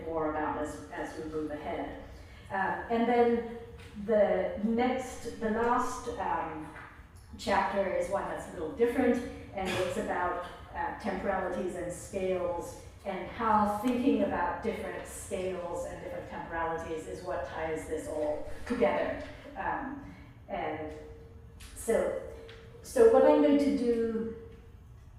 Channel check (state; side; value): identical; both; correlation 1.00